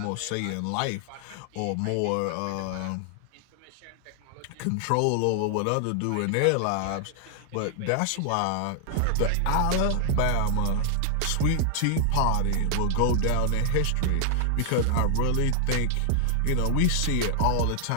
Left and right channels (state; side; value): different; both; correlation 0.00